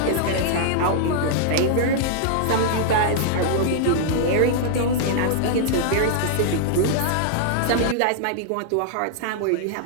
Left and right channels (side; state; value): both; different; correlation -0.01